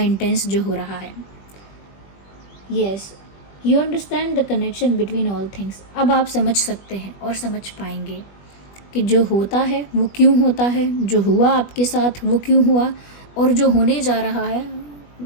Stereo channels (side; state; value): right; late; 20 ms